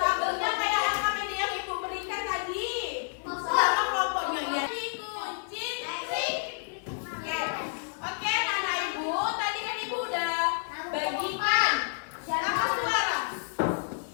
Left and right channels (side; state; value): right; silent; digital silence